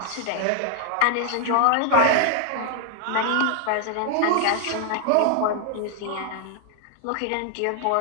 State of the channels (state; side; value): different; both; correlation 0.00